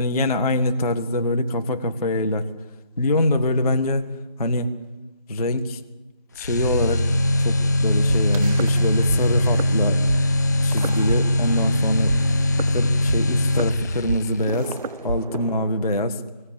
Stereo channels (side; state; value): both; inverted; correlation -0.75